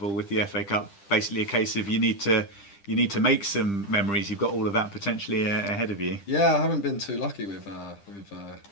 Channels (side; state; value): right; late; 10 ms